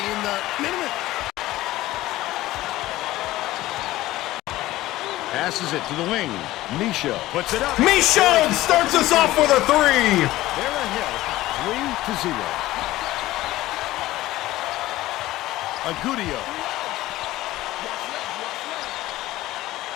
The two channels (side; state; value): right; quieter; 16.5 dB